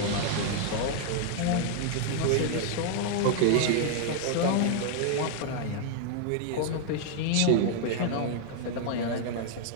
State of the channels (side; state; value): both; different; correlation 0.00